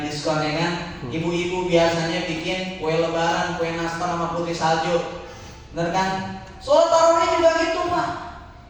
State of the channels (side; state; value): both; identical; correlation 1.00